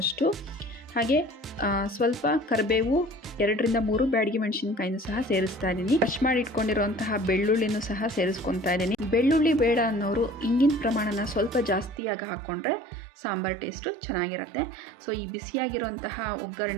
ಹಾಗೆ ಸ್ವಲ್ಪ ಕರಿಬೇವು, 2 ರಿಂದ 3 ಬ್ಯಾಡಗಿ ಮೆಣಸಿನಕಾಯಿನೂ ಸಹ ಸೇರಿಸ್ತಾ ಇದ್ದೀನಿ. ಕ್ರಷ್ ಮಾಡಿ ಇಟ್ಕೊಂಡಿರುವಂತಹ ಬೆಳ್ಳುಳ್ಳಿನೂ ಸಹ ಸೇರಿಸ್ಕೊತಾ ಇದ್ದೀನಿ. ಬೆಳ್ಳುಳ್ಳಿ ಬೇಡ ಅನ್ನೋರು ಇಂಗಿನ ಪ್ರಮಾಣನ ಸ್ವಲ್ಪ ಜಾಸ್ತಿಯಾಗಿ ಹಾಕ್ಕೊಂಡ್ರೆ ಸಾಂಬಾರ್ ಟೇಸ್ಟು ಚೆನ್ನಾಗಿರುತ್ತೆ. ಸೊ ಈ ಬಿಸಿಯಾಗಿರುವಂತಹ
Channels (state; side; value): drops out; left; at 12.0 s